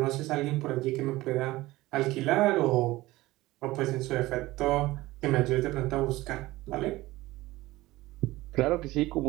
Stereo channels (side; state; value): left; quieter; 18.5 dB